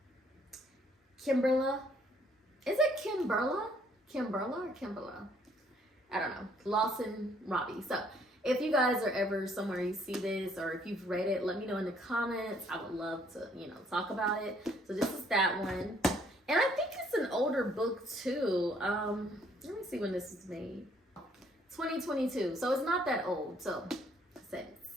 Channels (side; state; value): both; normal; correlation 0.65